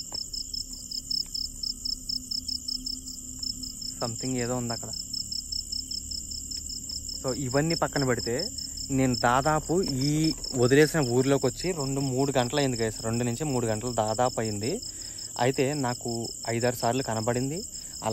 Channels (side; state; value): both; identical; correlation 1.00